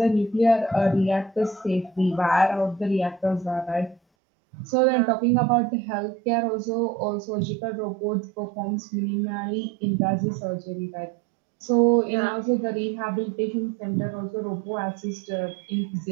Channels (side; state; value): left; drops out; at 4.0 s